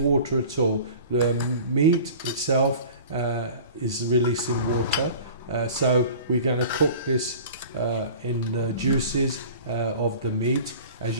at all. The meat itself is releasing water, so we're going to cook this in the juices of the meat. As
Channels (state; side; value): inverted; both; correlation -0.42